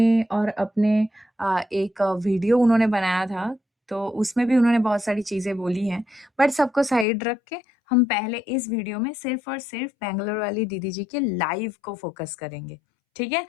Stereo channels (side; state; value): right; drops out; at 7.1 s